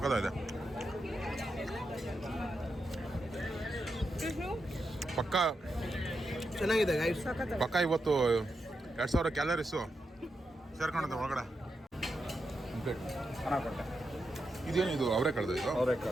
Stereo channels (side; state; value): both; normal; correlation 0.86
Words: ಪಕ್ಕ ಚೆನ್ನಾಗಿದೆ ಗೈಸ್. ಪಕ್ಕ ಇವತ್ತು 2000 ಕ್ಯಾಲರೀಸು ಸೇರ್ಕೊಂಡಂತೆ ಒಳಗಡೆ. ಇದೇನು ಇದು? ಅವರೆಕಾಳು. ಇದು